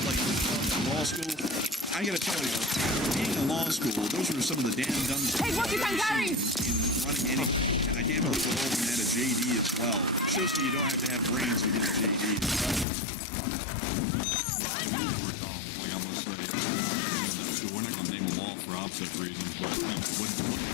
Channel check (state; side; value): drops out; right; at 12.9 s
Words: like, law school, I gotta tell you, being in law school, those were some of the damn dumbest things I've ever seen in running anything. And I can't believe we're all at a JD as well. Shows that you don't have to have brains to get a JD as well. Like I must say, I would not recommend that school. We're not going to name them all for opposite reasons, but what